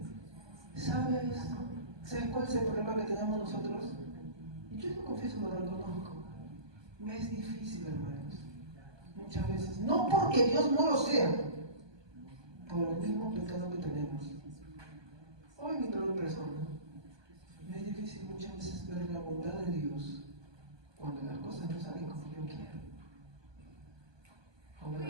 ¿Sabes cuál es el problema que tenemos nosotros? Y yo lo confieso, lo reconozco. Me es difícil, hermanos. Muchas veces. No porque Dios no lo sea, por el mismo pecado que tenemos. Hoy mi peor persona. Me es difícil muchas veces ver la bondad de Dios cuando las cosas no salen como yo quiero. Cuando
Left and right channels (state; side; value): late; left; 1.2 ms